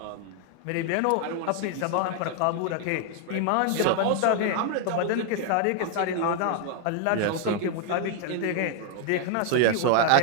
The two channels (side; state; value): both; different; correlation 0.00